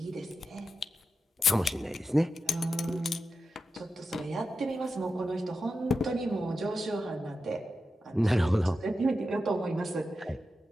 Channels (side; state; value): both; normal; correlation 0.90